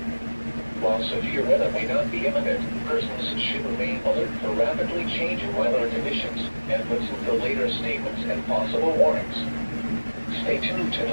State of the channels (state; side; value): inverted; both; correlation -1.00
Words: While severe weather may not be imminent, persons should remain alert for rapidly changing weather conditions and listen to later statements and possible warnings. Stay tuned to